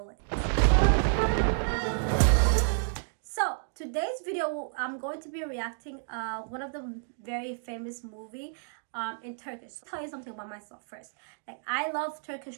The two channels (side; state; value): left; silent; digital silence